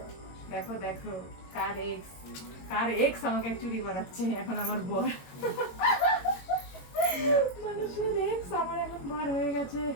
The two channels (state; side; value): late; right; 22 ms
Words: দেখো দেখো কার এক্স আমাকে চুরি করাচ্ছে এখন আমার বর, মানুষের এক্স আমার এখন বর হয়ে গেছে।